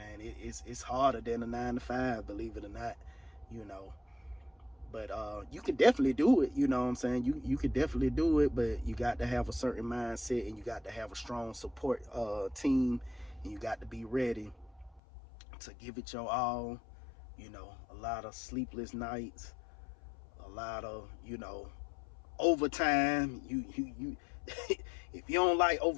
it's harder than a 9 to 5, believe it or not, you know. But you can definitely do it, you know what I'm saying? You can definitely do it, but you got to have a certain mindset, and you got to have a strong support team, and you got to be ready to give it your all. A lot of sleepless nights, a lot of, overtime. You if you don't like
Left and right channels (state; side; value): drops out; right; at 15.0 s